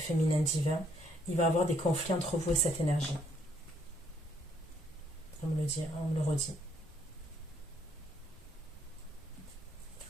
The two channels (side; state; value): both; normal; correlation 0.69